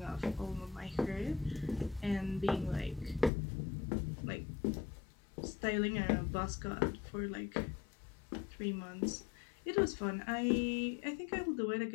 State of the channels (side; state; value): right; drops out; at 3.3 s